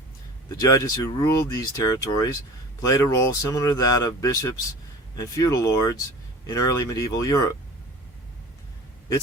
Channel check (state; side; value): normal; both; correlation 0.39